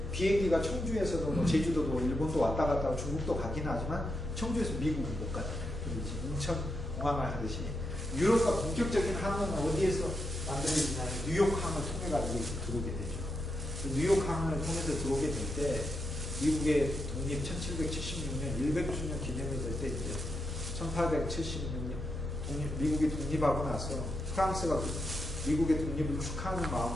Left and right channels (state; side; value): normal; both; correlation 0.84